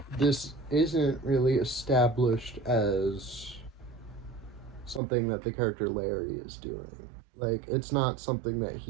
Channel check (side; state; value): left; drops out; at 5.0 s